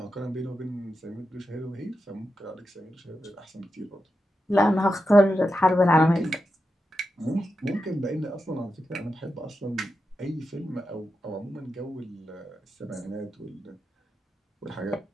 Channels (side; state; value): both; normal; correlation 0.89